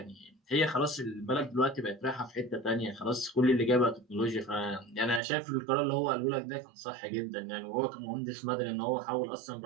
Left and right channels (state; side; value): drops out; left; at 5.2 s